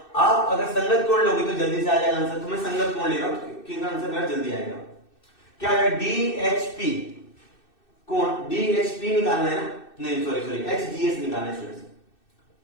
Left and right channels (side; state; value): right; late; 2.6 ms